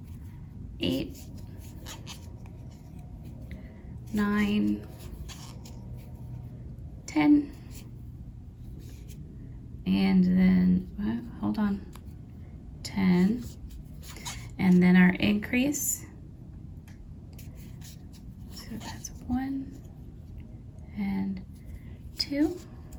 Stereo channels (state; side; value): identical; both; correlation 1.00